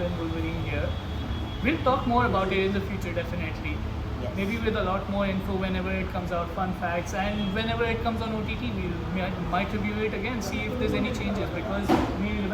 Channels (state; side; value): identical; both; correlation 1.00